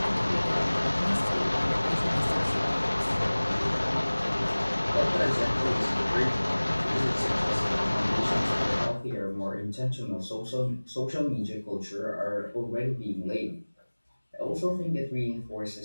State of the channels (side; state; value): both; inverted; correlation -1.00